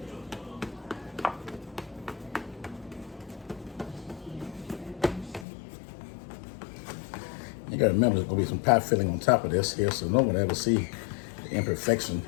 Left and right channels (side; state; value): right; drops out; at 5.5 s